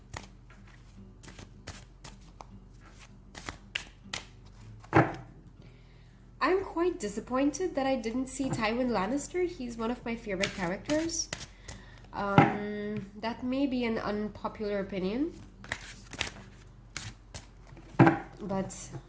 I'm quite disappointed that I didn't see Tywin Lannister. He's one of my favorite characters. That may be an unpopular opinion, but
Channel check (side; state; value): both; identical; correlation 1.00